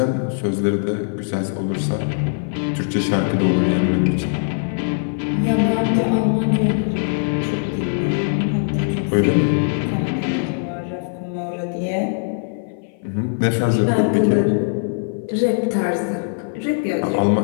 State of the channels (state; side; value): silent; right; 56 dB below the other